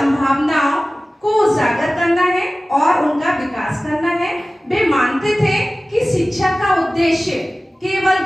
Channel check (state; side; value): normal; both; correlation 0.97